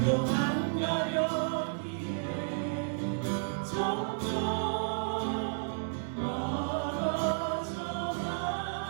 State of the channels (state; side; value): silent; left; 56 dB below the other